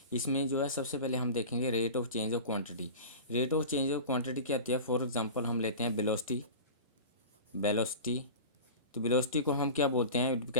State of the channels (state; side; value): inverted; both; correlation -0.33